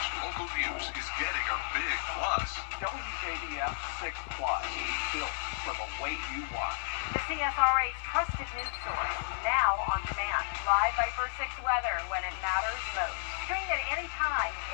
local news is getting a big plus. WJBF 6 Plus, built for the way you watch. The CSRA's trusted news source, now on demand. Live Viper 6 weather when it matters most. Stream it anytime,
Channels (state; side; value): silent; right; 56 dB below the other